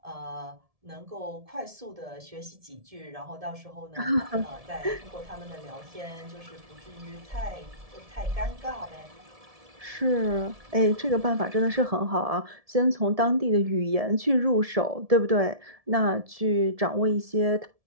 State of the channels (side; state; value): left; late; 1.7 ms